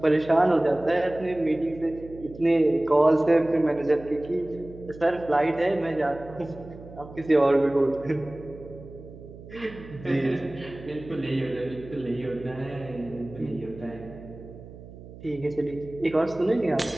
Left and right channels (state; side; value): noise; right; hum, 17 dB below the sound